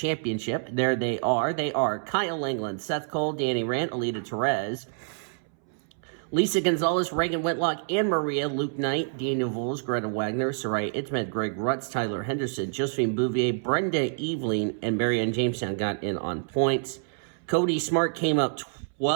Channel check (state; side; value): silent; left; 60 dB below the other